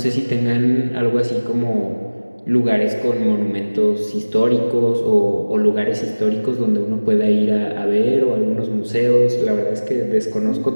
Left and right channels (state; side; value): inverted; both; correlation -1.00